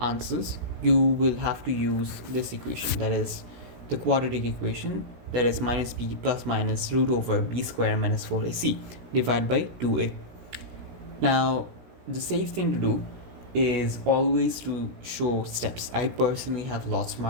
you will have to use this equation, that is the quadratic equation, that is minus b plus minus root over b square minus 4ac divided by 2a. Now the safe thing to do is always to show steps. I personally have lots of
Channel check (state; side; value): late; left; 16 ms